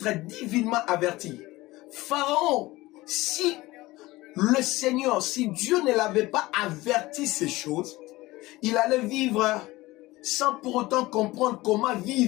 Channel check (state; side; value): quieter; right; 19.3 dB